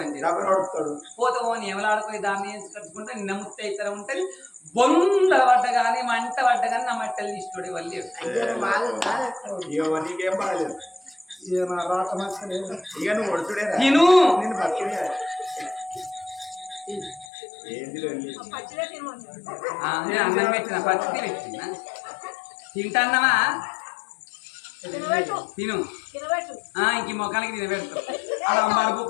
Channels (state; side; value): drops out; right; at 17.2 s